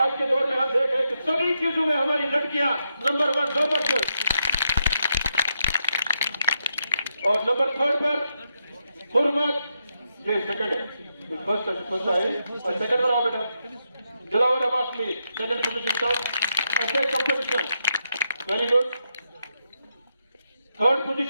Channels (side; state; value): both; inverted; correlation -0.83